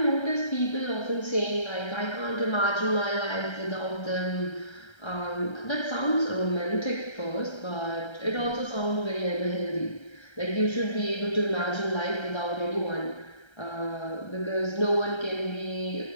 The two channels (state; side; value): late; right; 1.3 ms